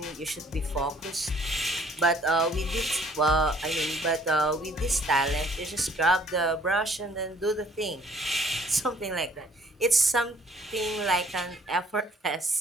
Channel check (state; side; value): normal; both; correlation 0.59